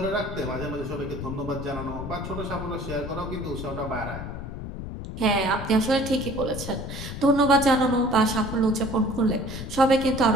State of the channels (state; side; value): noise; left; rumble, 8 dB below the sound